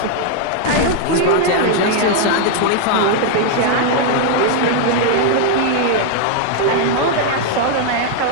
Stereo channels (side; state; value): both; different; correlation 0.00